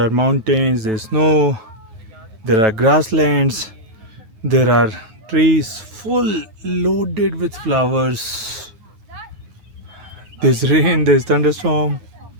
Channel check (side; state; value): left; late; 9.1 ms